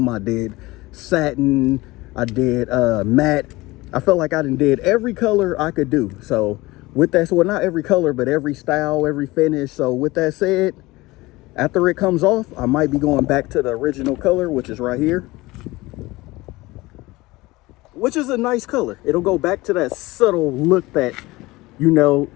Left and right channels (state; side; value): quieter; right; 20.5 dB